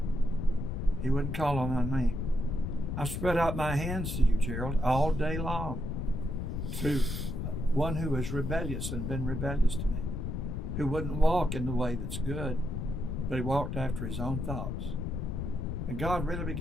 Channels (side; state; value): left; noise; rumble, 3 dB below the sound